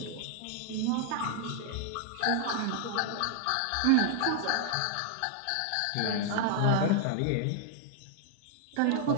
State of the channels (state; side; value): different; both; correlation 0.00